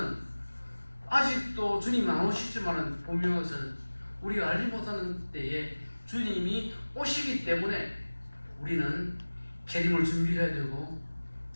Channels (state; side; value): inverted; both; correlation -1.00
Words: 아직도 주님이 안 오시지만은 보면서 우리가 알지 못하는 때에 주님이 오시기 때문에 우리는 재림을 준비해야 되고,